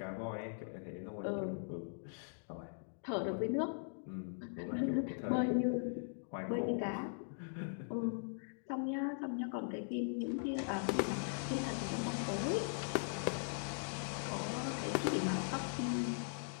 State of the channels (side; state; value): right; silent; digital silence